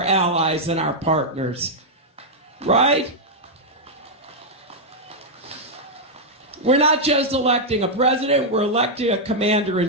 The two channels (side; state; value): both; normal; correlation -0.04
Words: allies and our partners, right? We're not just electing a president, we're electing a